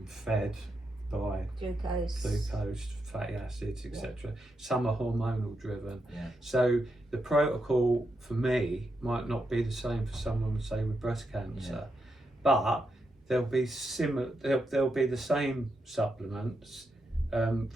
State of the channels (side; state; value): both; normal; correlation 0.84